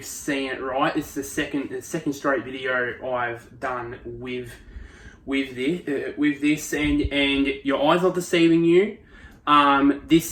seen it right. It's the second straight video I've done with this, and your eyes are deceiving you.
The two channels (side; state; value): both; identical; correlation 1.00